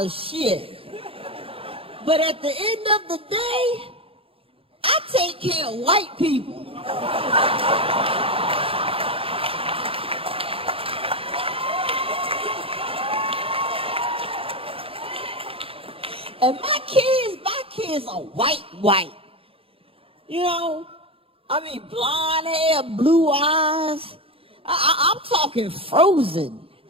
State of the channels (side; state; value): left; late; 0.27 ms